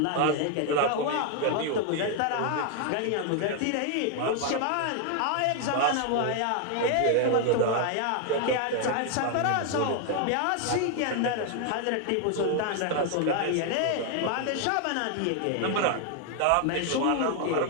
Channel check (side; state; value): both; different; correlation 0.00